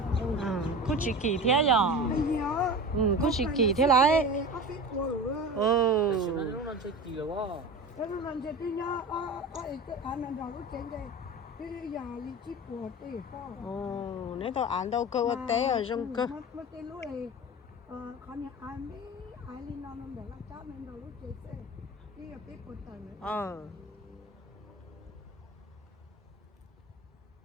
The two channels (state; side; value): normal; both; correlation 0.31